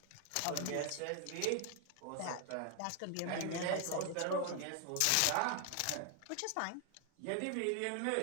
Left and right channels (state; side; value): different; both; correlation 0.00